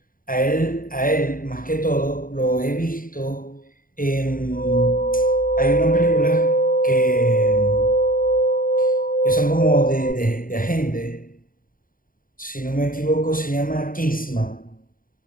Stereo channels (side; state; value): right; late; 0.41 ms